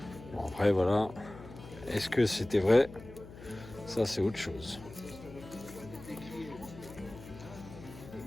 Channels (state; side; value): noise; left; hum, 16 dB below the sound